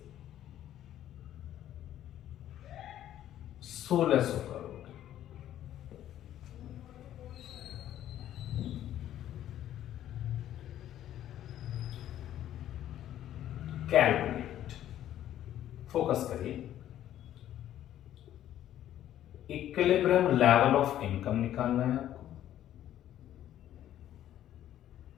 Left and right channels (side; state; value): right; quieter; 11.9 dB